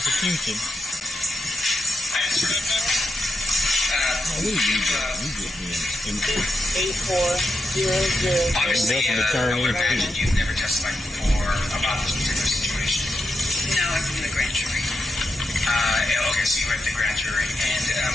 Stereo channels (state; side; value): normal; both; correlation 0.86